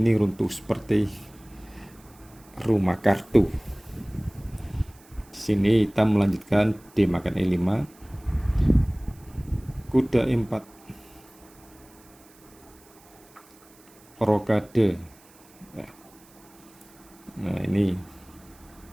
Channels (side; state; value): right; noise; hiss, 27 dB below the sound